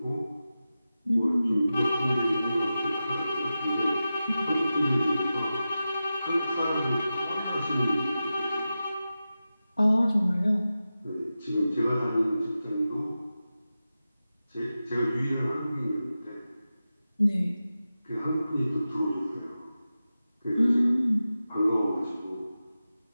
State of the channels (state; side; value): inverted; both; correlation -0.93